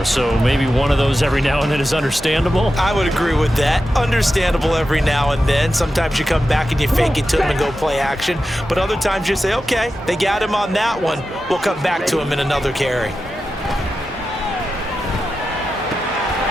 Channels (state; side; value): normal; both; correlation 0.91